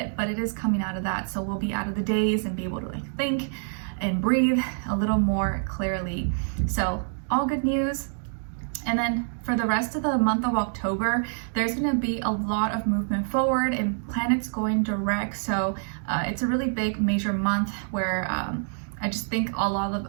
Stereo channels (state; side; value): silent; left; digital silence